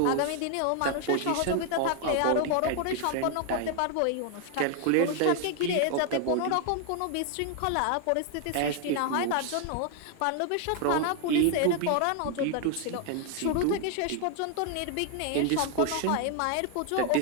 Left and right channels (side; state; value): both; different; correlation 0.00